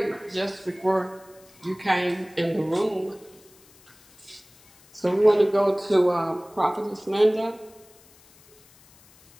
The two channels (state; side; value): noise; left; hiss, 27 dB below the sound